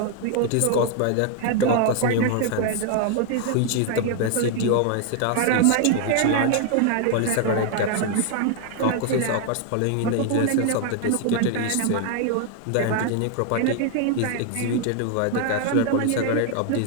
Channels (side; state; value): both; different; correlation 0.00